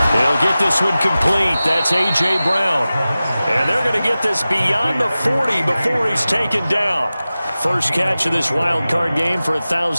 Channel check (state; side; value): inverted; both; correlation -0.96